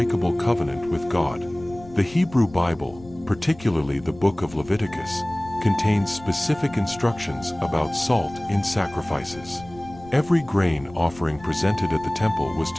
covenant with God. The Hebrew Bible, particularly the book of Leviticus, contains specific instructions about salt in sacrifices. Every grain offering presented at the temple was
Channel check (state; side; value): noise; left; rumble, 20 dB below the sound